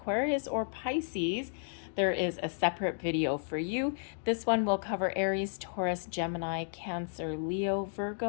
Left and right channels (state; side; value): silent; right; digital silence